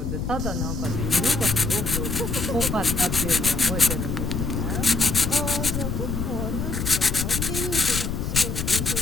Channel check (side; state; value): left; noise; rumble, 2 dB below the sound